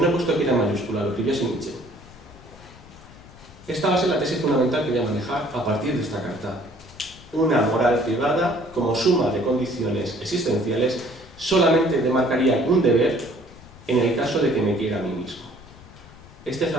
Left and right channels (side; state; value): left; noise; rumble, 21 dB below the sound